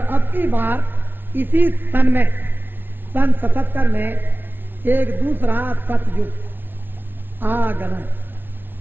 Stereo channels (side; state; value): left; late; 0.099 ms